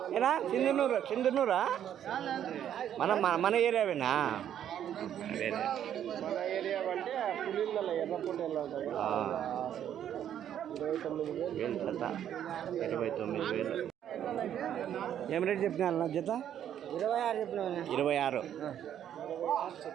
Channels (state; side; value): quieter; left; 10.1 dB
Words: ఏనా సింధనూరా? మన ఏరియావేనా? మన ఏరియా అంటే పులిళ్ళ ఎర్రపొట్టేళ్ళు 29,000 జత. 29,000. ఏం రేట్ చెప్పినా జత? 26 చెప్పినా.